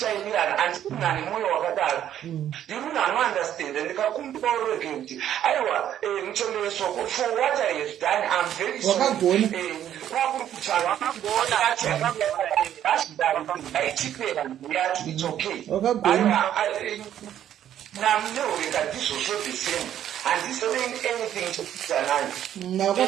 handikunane mwoyo wakadaro ndiri munhu anounderstand ndikakumbira urege kuti aiwa muchombe wesoko for what I have done I'm very sorry kwakuri kutaura aichipera yacho it's okay namuneureka ndizvozvo the same handisaying anything to kutanani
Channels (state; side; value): quieter; left; 10.8 dB